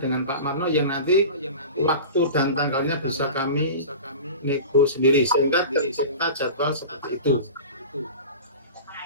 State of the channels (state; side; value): inverted; both; correlation -0.34